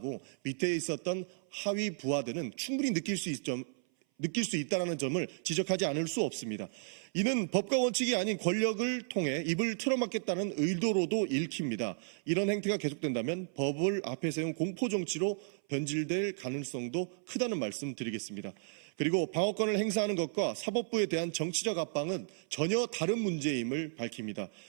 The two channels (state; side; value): silent; left; 55 dB below the other